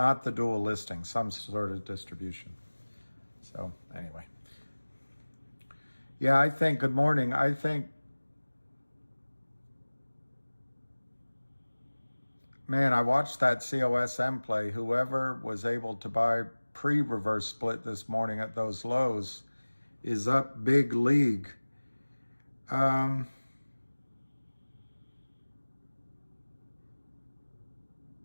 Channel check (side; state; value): both; inverted; correlation -1.00